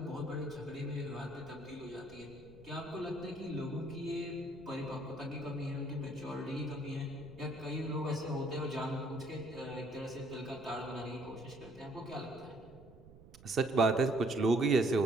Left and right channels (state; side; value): noise; right; rumble, 20 dB below the sound